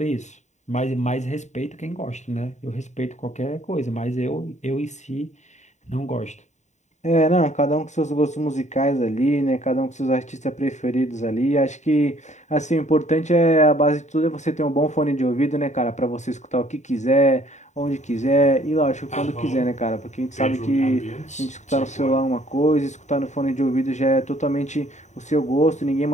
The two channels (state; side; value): late; right; 0.34 ms